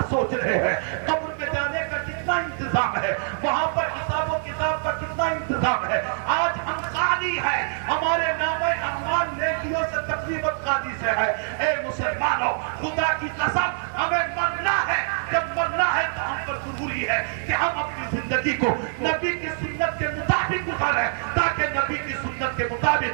سوچ رہے ہیں، قبر میں جانے کا کتنا انتظام ہے، وہاں پر حساب و کتاب کا کتنا انتظام ہے۔ آج ہم خالی ہیں، ہمارے نام اعمال نیکیوں سے تقریباً خالی سے ہے۔ اے مسلمانوں، خدا کی قسم ہمیں مرنا ہے، جب مرنا ہے تو ہم پر ضروری ہے کہ ہم اپنی زندگی کو نبی کی سنت کے مطابق گزاریں، تاکہ نبی کی سنت کے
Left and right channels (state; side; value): silent; left; 62 dB below the other